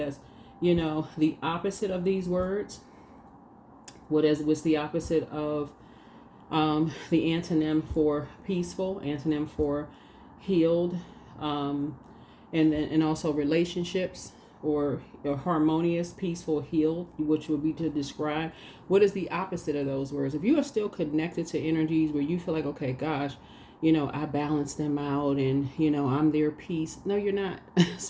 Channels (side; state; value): both; identical; correlation 1.00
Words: the opposite of these words, what's the opposite of the antonym for peaceful, antonym for healed, and also relationships, or harmonious, peaceful, healed, which would be to describe what is the opposite of those words. If you are still connected to energies where you feel like, okay, gosh, I balance them out and, I'm their peace. No, you're not.